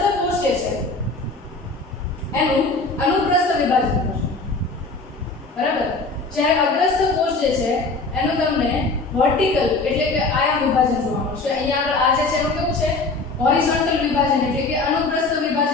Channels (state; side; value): quieter; right; 3.6 dB